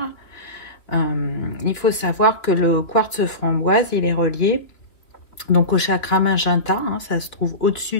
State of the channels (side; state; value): right; late; 2.9 ms